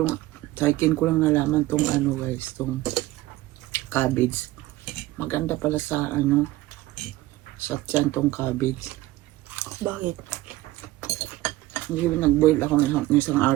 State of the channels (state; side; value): quieter; left; 17.2 dB